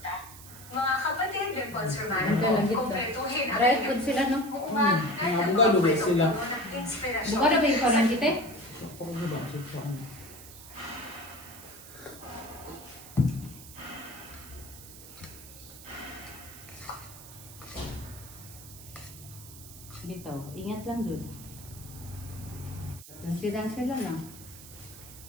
Mga kapatid, Dimples Ang Romano, galagit to. kumpletuhin ang Right inyong food sila, no? buungan kahit Mga ang abogado ba mga sila? puno ng inspirasyon. Buka na ba yung parang kita? Ako ko ba sa ano? Bitaw, ingat lang jud. Sidang lang.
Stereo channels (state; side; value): noise; right; hiss, 16 dB below the sound